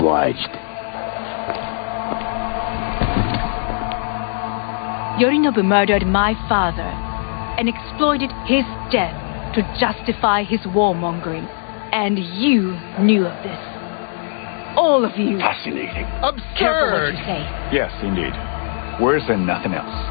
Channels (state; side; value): silent; right; 61 dB below the other